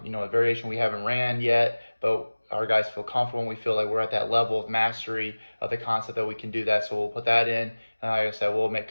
variation we haven't ran yet, but our guys feel comfortable and we feel like we're at that level of mastery of the concept that we can do that. So we'll put that in, and like I said, we'll make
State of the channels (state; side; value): inverted; both; correlation -1.00